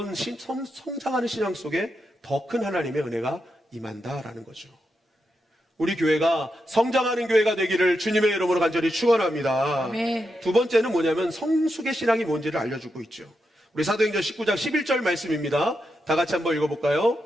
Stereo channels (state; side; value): normal; both; correlation 0.85